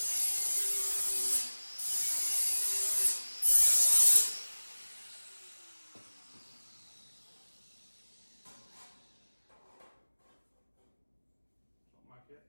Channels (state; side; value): inverted; both; correlation -1.00